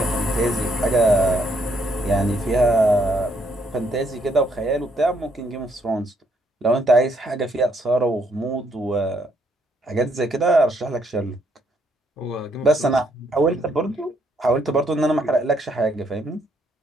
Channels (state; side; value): normal; both; correlation 0.71